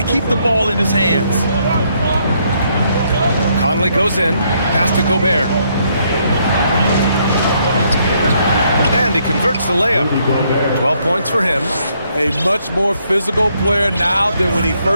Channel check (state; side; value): inverted; both; correlation -0.72